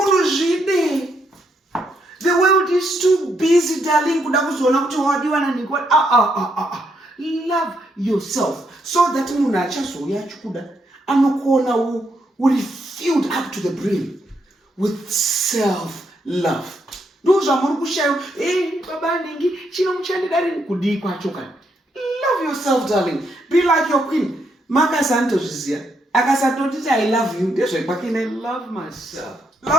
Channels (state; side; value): normal; both; correlation 0.77